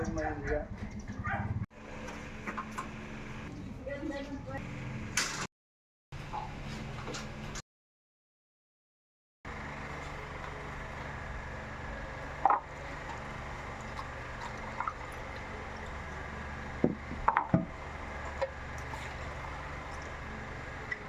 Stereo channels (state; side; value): identical; both; correlation 1.00